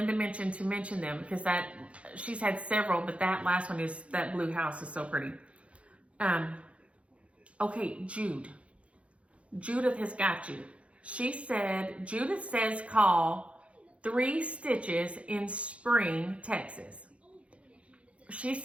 mentioned to mention them because she's had several, but that last one is, that blue house is so pretty. Okay, Judith has got you. She said, Judith says call 3 Stitches in Spring, Texas. She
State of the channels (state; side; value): late; left; 0.062 ms